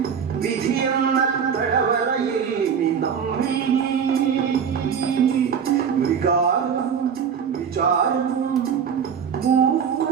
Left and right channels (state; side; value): quieter; left; 7.2 dB